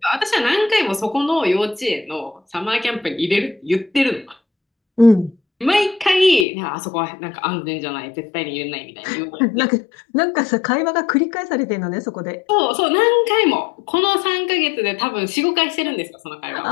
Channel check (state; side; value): drops out; right; at 6.5 s